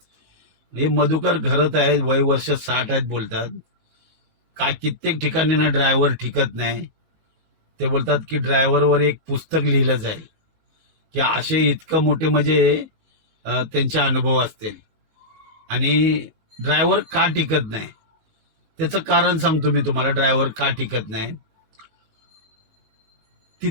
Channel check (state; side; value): late; left; 19 ms